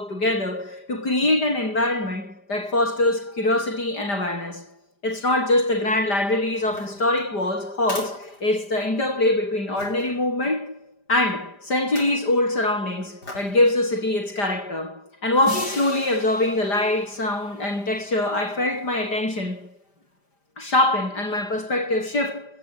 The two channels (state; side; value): late; right; 5.0 ms